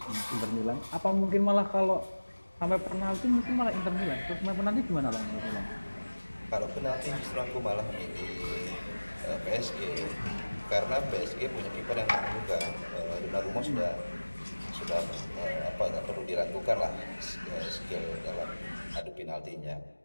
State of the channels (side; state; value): both; inverted; correlation -1.00